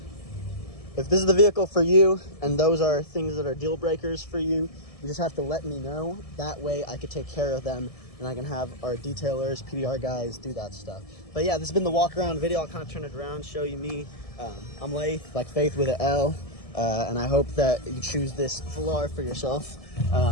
if this is the vehicle for you and those are things that are deal breakers for you, you just have to let me know. That way I could take care of them and I can have our detailers, PDR guys do that stuff. But yeah, this has been the walk around video. I'll kind of turn it around, show you me. I'm Laith, like Faith with an L, and I hope that you choose this Velar for yourself. So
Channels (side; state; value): right; late; 1.7 ms